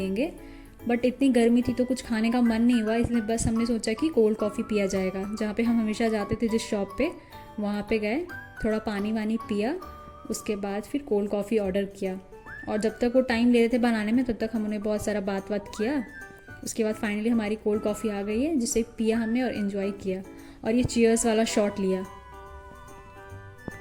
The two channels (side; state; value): both; identical; correlation 1.00